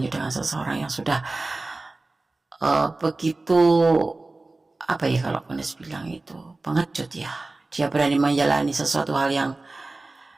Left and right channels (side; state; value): left; quieter; 3.2 dB